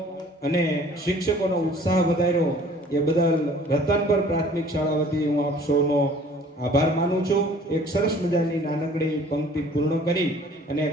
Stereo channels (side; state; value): both; normal; correlation 0.52